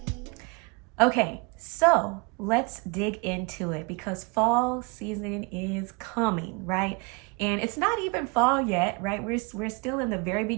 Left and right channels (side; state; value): left; quieter; 29.4 dB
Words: Okay, so let's dig into it because fall season is coming, right? And it's not even fall yet, right? We're still in the very